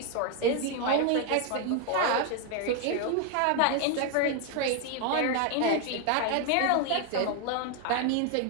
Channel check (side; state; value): both; different; correlation 0.01